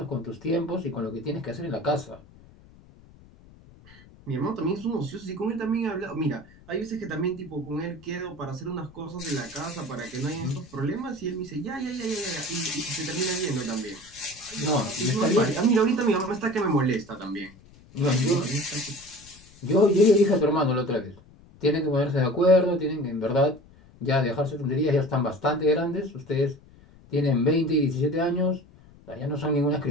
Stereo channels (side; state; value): left; noise; rumble, 24 dB below the sound